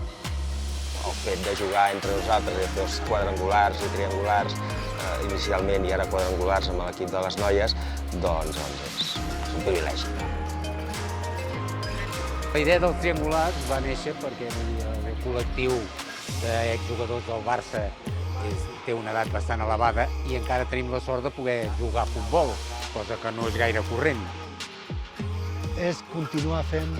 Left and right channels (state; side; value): identical; both; correlation 1.00